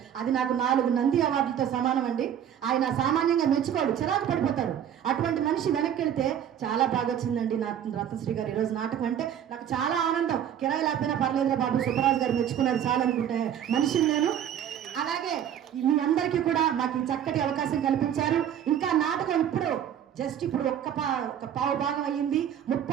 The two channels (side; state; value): left; quieter; 9.7 dB